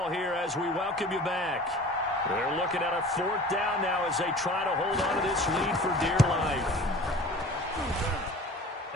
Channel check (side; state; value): both; normal; correlation 0.42